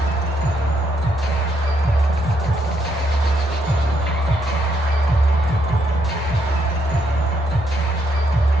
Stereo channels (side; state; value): left; noise; hum, 20 dB below the sound